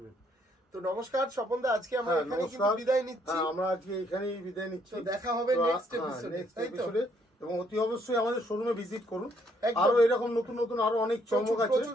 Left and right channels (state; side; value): normal; both; correlation 0.69